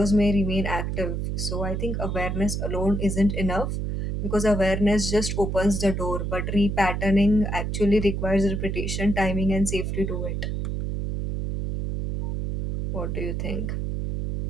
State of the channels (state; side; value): noise; right; hum, 2 dB below the sound